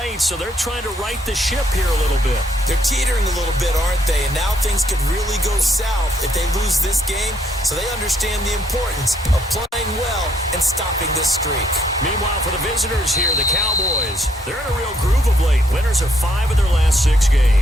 so they're trying to right the ship here a little bit. They're teetering a little bit, aren't they? And now things could really go south if they lose this game, so they understand the importance of playing well and stopping this streak. Meanwhile, for the visitors here, the Cowboys, they're in a real groove of late. Winners of 5 of their last 6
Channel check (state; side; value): normal; both; correlation 0.70